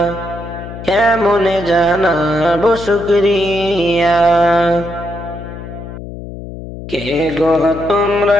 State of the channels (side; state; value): left; noise; hum, 11 dB below the sound